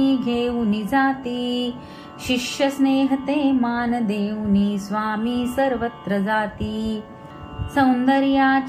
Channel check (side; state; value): both; identical; correlation 1.00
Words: घेऊन जाती शिष्य स्नेह ते मान देऊनी स्वामी सर्वत्र जाती